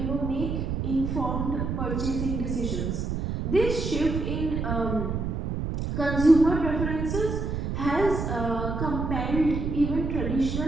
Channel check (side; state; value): right; noise; rumble, 2 dB below the sound